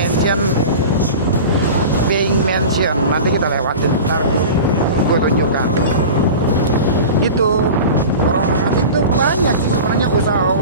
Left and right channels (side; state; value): both; inverted; correlation -0.33